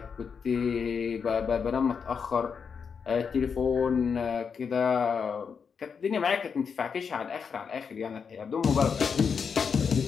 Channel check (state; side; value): quieter; right; 6.2 dB